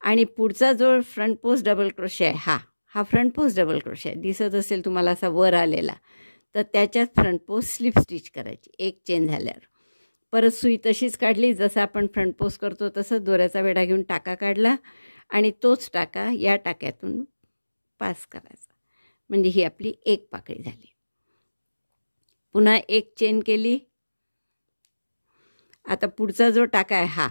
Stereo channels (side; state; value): both; inverted; correlation -1.00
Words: आणि पुढचा जो फ्रंट पोस्ट डबल क्रोशे आहे हा फ्रंट पोस्ट डबल क्रोशे आहे, दिसत असेल तुम्हाला असा वर आलेला. तर त्याच्यात फ्रंट पोस्ट स्लिप स्टिच करायची. 1 चेन झाल्यावर परत सुई तशीच काढली, जसं आपण फ्रंट पोस्ट करतो तसं दोऱ्याचा वेढा घेऊन टाका काढला, आणि तोच टाका या टाक्यातून पास करायचा. म्हणजे ही आपली 1 पाकळी झाली. पुन्हा 1 चेन केली. आता पुढचा जो टाका आहे